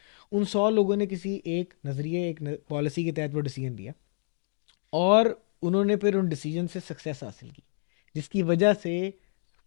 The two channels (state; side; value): silent; right; digital silence